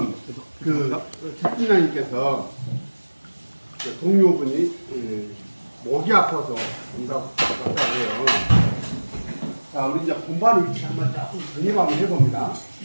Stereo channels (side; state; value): both; inverted; correlation -1.00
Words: 그 채팅장님께서 동료분이 목이 아파서 온다고 해요. 자, 우리 이제 공부하는 위치 한번 조금 정립 한번 해봅니다.